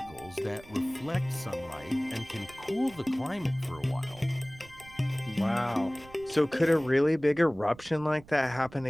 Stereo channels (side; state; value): right; noise; rumble, 21 dB below the sound